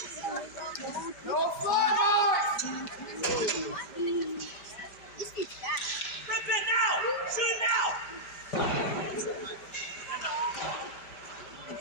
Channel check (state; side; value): late; right; 5.0 ms